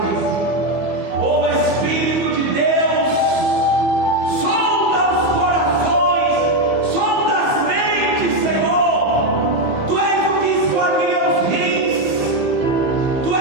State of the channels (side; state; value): left; late; 15 ms